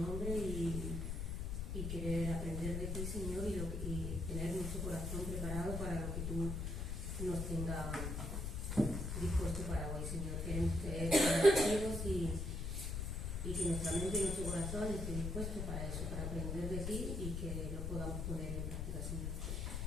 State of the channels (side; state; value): left; noise; rumble, 2 dB below the sound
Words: y querer aprender de ti, Señor, y tener nuestro corazón preparado para lo que tú nos tengas dispuesto para hoy, Señor. Queremos ser agradecidos y que nuestra mente y nuestro corazón esté dispuesto para eso, para aprender de ti y que lo podamos poner en práctica, Señor.